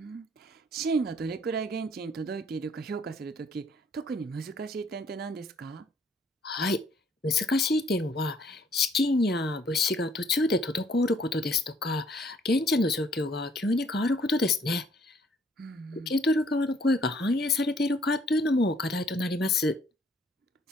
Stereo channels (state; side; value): normal; both; correlation 0.63